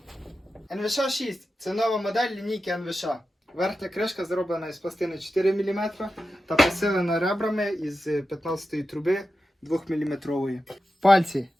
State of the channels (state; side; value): normal; both; correlation 0.91